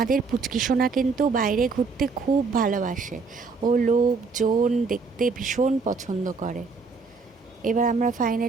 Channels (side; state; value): left; quieter; 4.6 dB